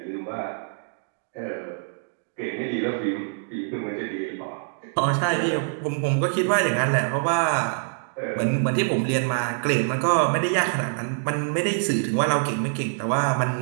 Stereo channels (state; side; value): silent; left; digital silence